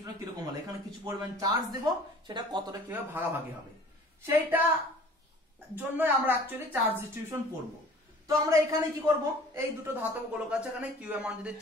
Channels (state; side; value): normal; both; correlation 0.48